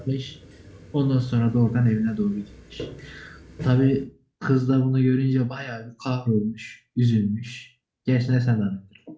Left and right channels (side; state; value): both; identical; correlation 1.00